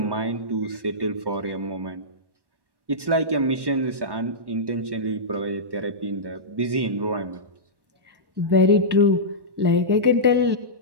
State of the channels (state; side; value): late; left; 1.1 ms